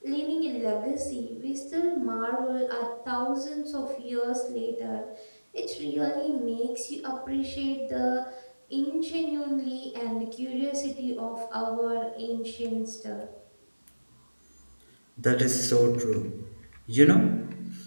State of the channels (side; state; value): both; inverted; correlation -1.00